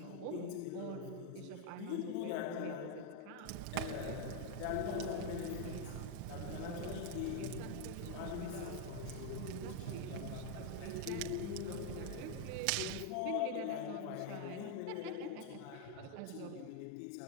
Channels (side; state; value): both; different; correlation 0.01